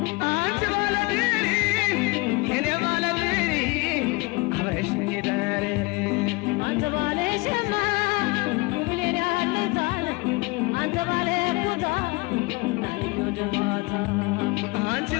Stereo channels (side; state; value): right; quieter; 25.6 dB